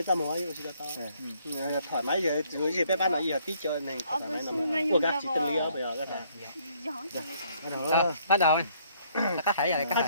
tao nói chỉ là tao thoải mái giờ rồi gì bé bán là giờ tí chơi này thoải mái lắm của các chị tâm lý bây giờ các bạn Bắt đầu. Các thảy rồi các các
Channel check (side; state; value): both; inverted; correlation -0.65